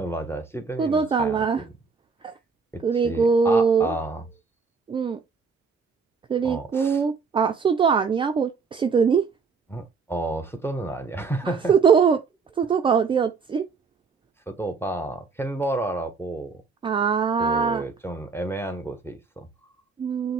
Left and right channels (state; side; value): quieter; left; 5.2 dB